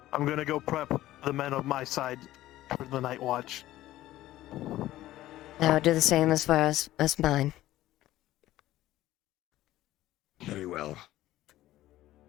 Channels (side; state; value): right; quieter; 15.1 dB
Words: I'm gonna go prep the men of my side for the night watch. I will do the same as far as mine. Very well.